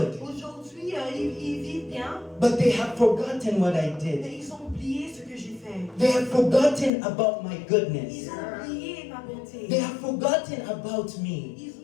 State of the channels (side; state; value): right; drops out; at 6.9 s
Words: Aujourd'hui, ils vivent bien. But they have forgotten what I did. Mais ils ont oublié ce que j'ai fait. They have forgotten about my Ils goodness. ont oublié ma bonté. They have forgotten about me.